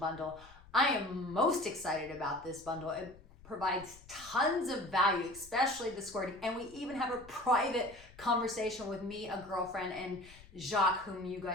I am most excited about this bundle. It provides tons of value, especially the squirting. And we even have a private conversation with me, a girlfriend, and Jacques, whom you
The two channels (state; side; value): noise; left; rumble, 22 dB below the sound